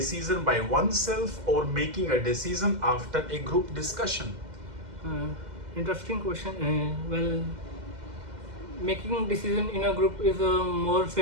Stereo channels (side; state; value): left; late; 2.1 ms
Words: by oneself or making a decision after a group discussion? Interesting question. Well, making decision in a group is more